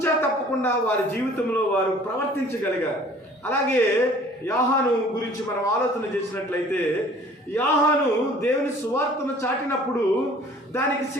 తప్పకుండా వారి జీవితంలో వారు ప్రవర్తించగలిగారు. అలాగే యోహాను గురించి మనం ఆలోచన చేసినట్లయితే, యోహాను దేవుని సువార్తను చాటినప్పుడు దానికి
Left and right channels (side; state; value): both; normal; correlation 0.51